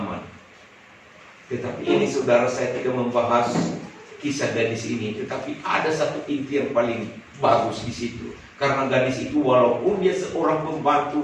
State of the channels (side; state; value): both; identical; correlation 1.00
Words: Tetapi ini saudara, saya tidak membahas kisah gadis ini, tetapi ada satu inti yang paling bagus di situ. Karena gadis itu walaupun dia seorang